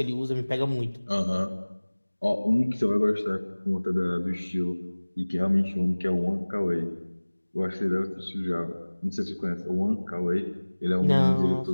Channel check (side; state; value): both; inverted; correlation -1.00